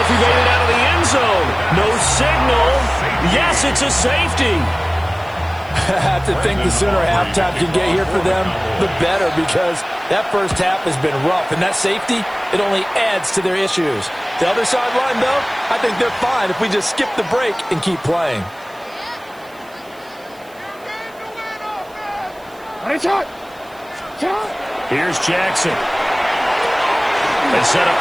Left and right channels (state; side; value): noise; right; hiss, 27 dB below the sound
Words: if he made it out of the end zone. No signal. Yes, it's a safety. I have to think the sooner halftime can get here for them, the better, because that first half has been rough. And that safety, it only adds to their issues. The other sideline, though, I think they're fine if we just skip the break and keep playing. Here's Jackson. They set up